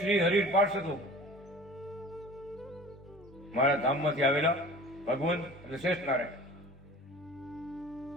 હરિ પાર્ષદો. મારા ધામમાંથી આવેલા ભગવંત અને શ્રેષ્ઠ નારાયણ.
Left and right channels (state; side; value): normal; both; correlation 0.41